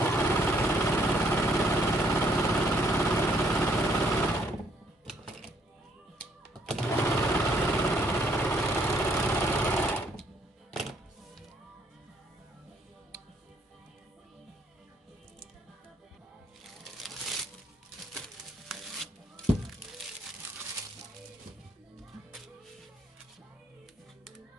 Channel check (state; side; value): normal; both; correlation 0.68